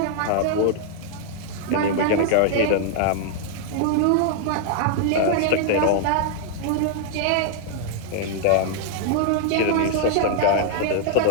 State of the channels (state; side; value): different; both; correlation 0.00